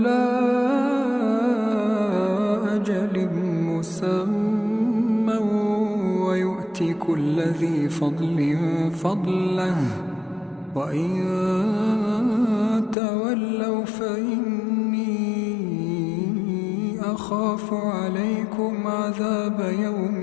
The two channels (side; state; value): right; drops out; at 13.0 s